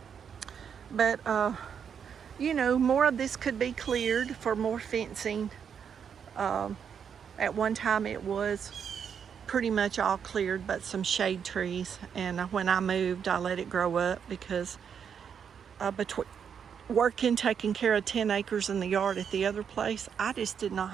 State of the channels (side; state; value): left; quieter; 7.4 dB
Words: But, you know, more of this could be cleared for more fencing. At one time it was pretty much all cleared but some shade trees. And when I moved, I let it grow up because between working, taking care of 10 acres in the yard at the other place, I just did not